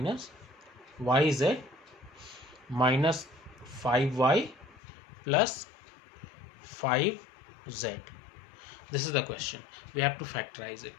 yz minus 5y plus 5z. This is the question. We have to factorize it.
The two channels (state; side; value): drops out; right; at 4.8 s